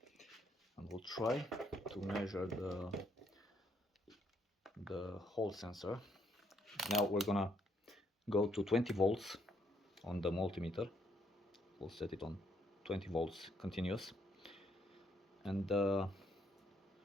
And we'll try to measure the Hall sensor. Now we're gonna go to 20 volts on the multimeter. We'll set it on 20 volts continuous, and I'll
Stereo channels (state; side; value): normal; both; correlation 0.72